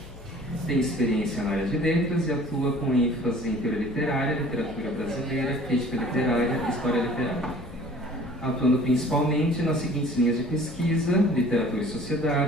Tem experiência na área de letras e atua com ênfase em teoria literária, literatura brasileira, crítica literária e história literária. Atuando principalmente nas seguintes linhas de pesquisa: literatura e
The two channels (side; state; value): both; normal; correlation 0.49